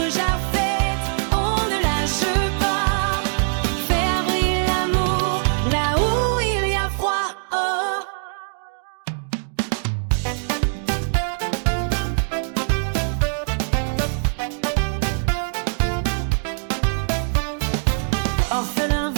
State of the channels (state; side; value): silent; left; digital silence